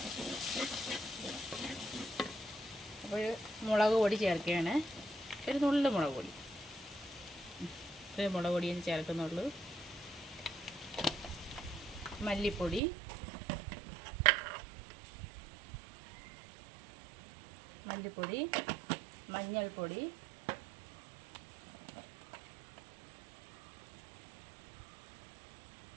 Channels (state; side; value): drops out; left; at 12.8 s